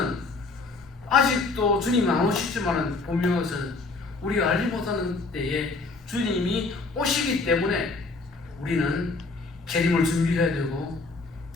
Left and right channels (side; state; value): right; quieter; 3.7 dB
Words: 아직도 주님이 안 오시지만은 보면서 우리가 알지 못하는 때에 주님이 오시기 때문에 우리는 재림을 준비해야 되고,